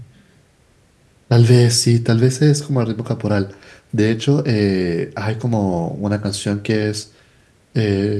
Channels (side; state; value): both; identical; correlation 1.00